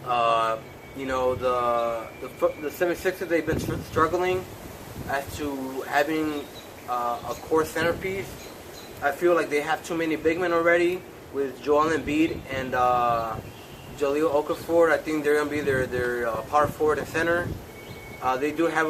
The 76ers, they've been struggling as to having a core centerpiece. I feel like they have too many big men already with Joel Embiid and Jahlil Okafor. I think they're going to be their power forward and center. They do have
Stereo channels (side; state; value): both; identical; correlation 1.00